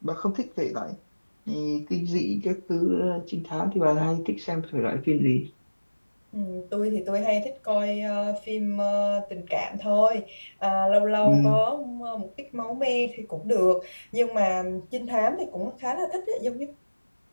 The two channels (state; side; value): inverted; both; correlation -1.00